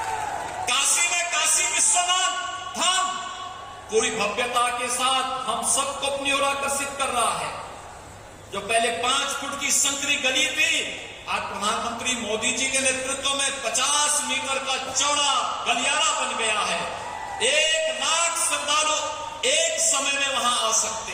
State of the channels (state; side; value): identical; both; correlation 1.00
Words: काशी में काशी विश्वनाथ धाम पूरी भव्यता के साथ हम सबको अपनी ओर आकर्षित कर रहा है। जो पहले 5 फुट की संकरी गली थी, आज प्रधानमंत्री मोदी जी के नेतृत्व में 50 मीटर का चौड़ा गलियारा बन गया है। 1 लाख श्रद्धालु एक समय में वहां आ सकते